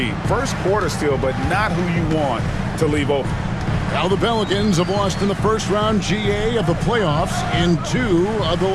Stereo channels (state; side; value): identical; both; correlation 1.00